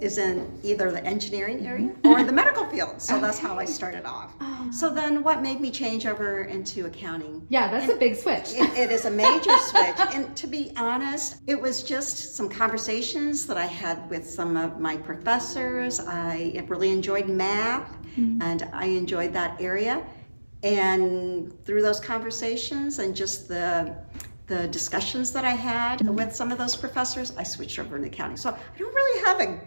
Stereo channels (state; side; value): inverted; both; correlation -1.00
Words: in either the engineering area or the medical field. So that's how I started off. So then what made me change over into accounting? Yeah, that's a big switch. It is a major switch. And to be honest, it was just some conversations that I had with some of my professors. I really enjoyed math, and I enjoyed that area. And through those conversations and just the discussions that I had with some of those professors, I switched over into accounting. So I don't really have a